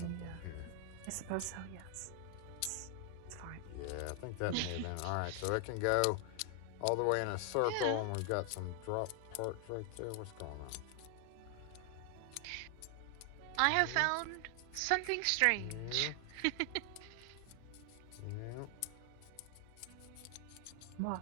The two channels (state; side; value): different; both; correlation 0.00